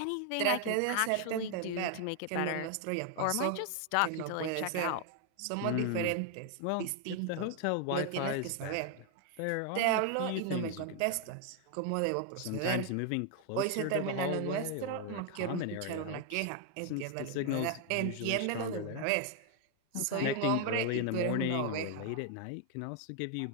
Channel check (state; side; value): different; both; correlation 0.00